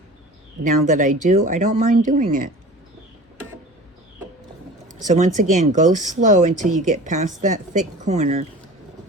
now that I do, I don't mind doing it. So once again, go slow until you get past that thick corner,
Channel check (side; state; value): both; normal; correlation 0.39